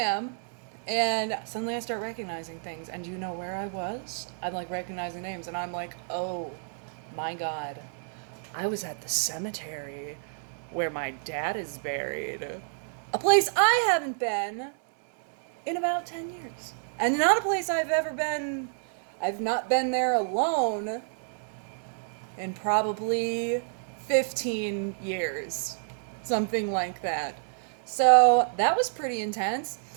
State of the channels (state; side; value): silent; left; 58 dB below the other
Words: And suddenly I start recognizing things. And do you know where I was? I'm recognizing names. And I'm like, oh my God. I was at the cemetery where my dad is buried. A place I haven't been in about 10 years. And not a place I've ever been. I've not been there alone in probably 15 years. Something like that. So that was pretty intense.